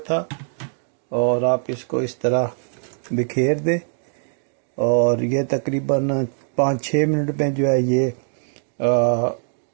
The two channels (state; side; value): silent; left; digital silence